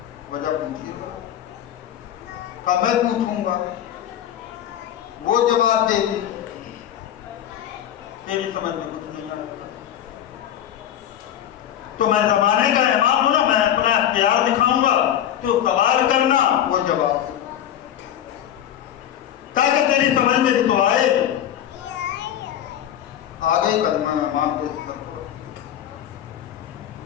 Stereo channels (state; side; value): quieter; right; 10.7 dB